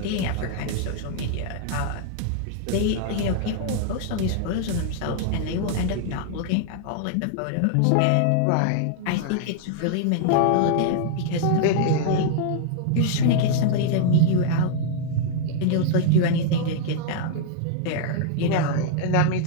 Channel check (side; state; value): both; different; correlation -0.01